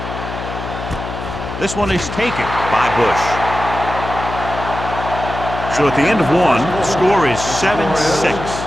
This one is taken by Bush. So at the end of one, the score is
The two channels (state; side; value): noise; left; hum, 8 dB below the sound